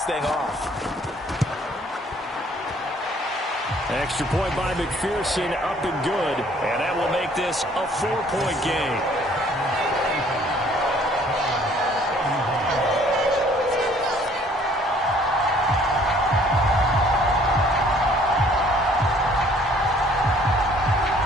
thing off. Extra point by McPherson, up and good. And that will make this a 4-point game.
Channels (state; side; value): normal; both; correlation 0.59